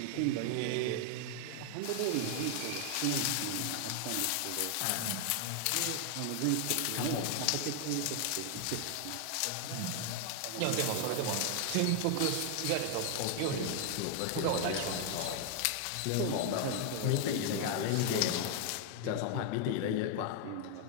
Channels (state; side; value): different; both; correlation 0.00